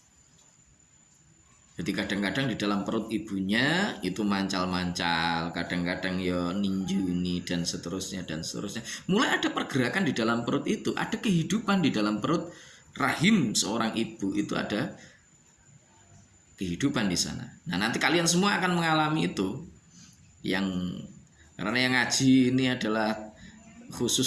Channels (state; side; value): identical; both; correlation 1.00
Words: Jadi kadang-kadang di dalam perut ibunya itu mancal-mancal, kadang-kadang ya ninjuni dan seterusnya dan seterusnya. Mulai ada pergerakan di dalam perut itu, ada kehidupan di dalam perut rahim seorang ibu itu, ada kehidupan di sana. Nah, nanti kalian semua akan mengalami itu. Karena yang ngaji ini adalah